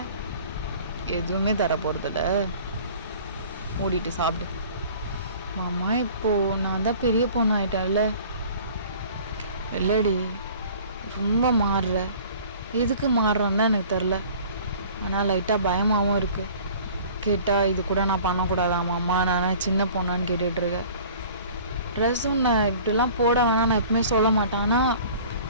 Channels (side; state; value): both; inverted; correlation -0.47